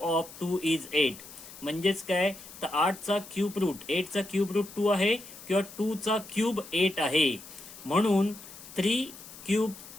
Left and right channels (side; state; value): left; noise; hiss, 16 dB below the sound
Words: 2 is 8. म्हणजेच काय, तर 8 चा क्यूब रूट 8 चा क्यूब रूट 2 आहे किंवा 2 चा क्यूब 8 आहे, म्हणून 3 cube